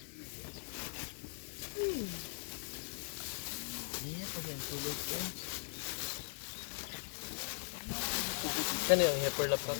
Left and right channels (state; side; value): silent; right; digital silence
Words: Kani ang heifer lap